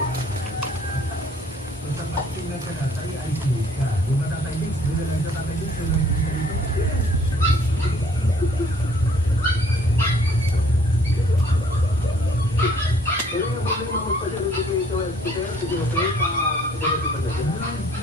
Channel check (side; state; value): both; normal; correlation 0.59